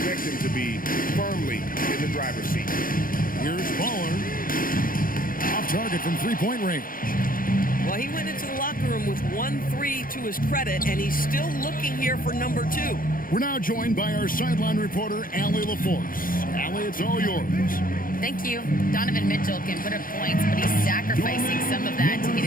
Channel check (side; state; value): right; late; 0.41 ms